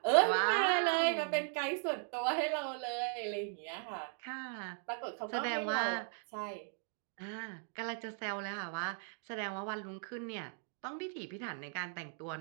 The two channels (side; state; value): left; silent; 53 dB below the other